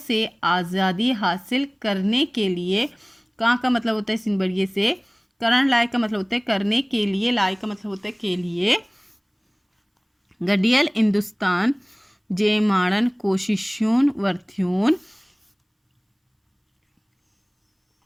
आज़ादी हासिल करने के लिए। कहाँ का मतलब होता है सिंध बड़िए से। करन लाए का मतलब होता है करने के लिए, लाए का मतलब होता है के लिए। गडियल हिंदुस्तान जे माड़न कोशिशून वर्थियून।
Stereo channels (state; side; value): identical; both; correlation 1.00